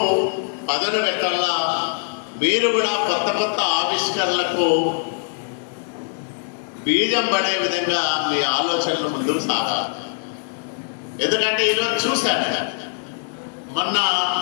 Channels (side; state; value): right; silent; digital silence